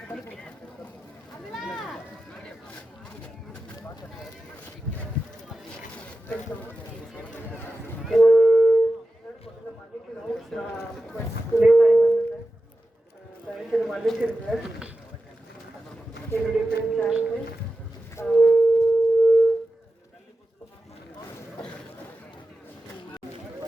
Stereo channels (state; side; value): normal; both; correlation 0.93